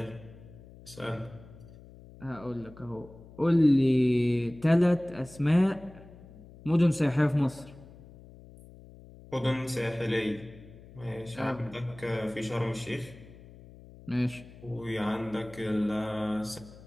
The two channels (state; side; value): noise; left; hum, 20 dB below the sound